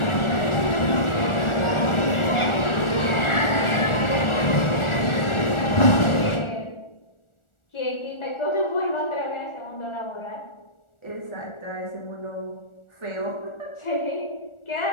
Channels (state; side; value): late; right; 1.4 ms